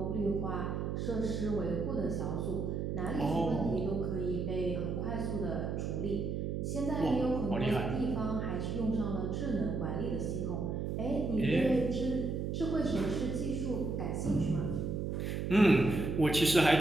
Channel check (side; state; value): right; noise; hum, 2 dB below the sound